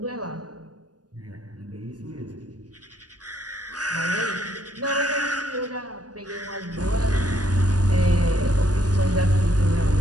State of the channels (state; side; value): late; left; 0.69 ms